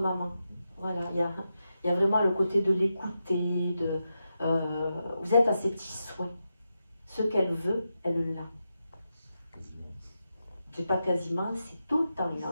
Voilà, il y a vraiment le côté de l'écouter, vous êtes à ses petits souhaits. Ce qu'elle veut, elle l'a. C'est pas quasiment, c'est tout le temps, il est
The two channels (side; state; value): both; inverted; correlation -0.88